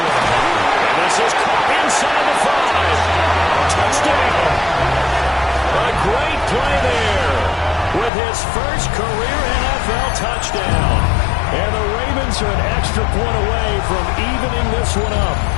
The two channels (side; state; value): right; drops out; at 8.1 s